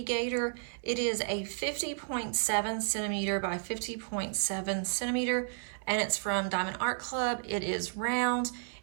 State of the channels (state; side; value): silent; left; 56 dB below the other